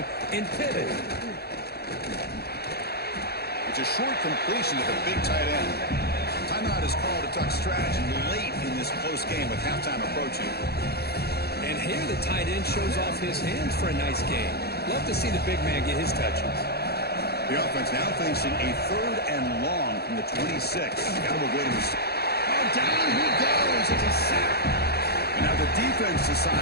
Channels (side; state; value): right; late; 0.46 ms